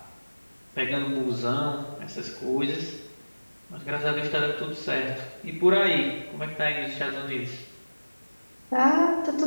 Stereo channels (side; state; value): both; inverted; correlation -1.00